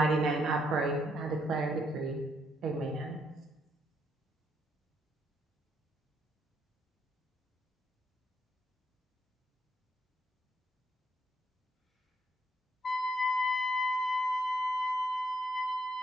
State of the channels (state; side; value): normal; both; correlation 0.75